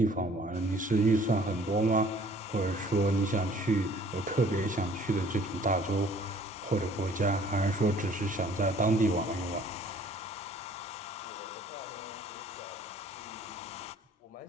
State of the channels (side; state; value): both; normal; correlation 0.56